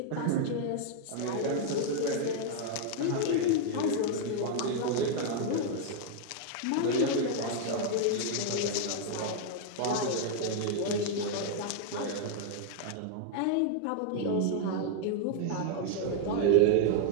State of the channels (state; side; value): different; both; correlation 0.00